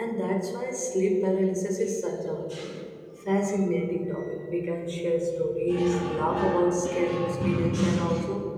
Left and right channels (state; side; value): identical; both; correlation 1.00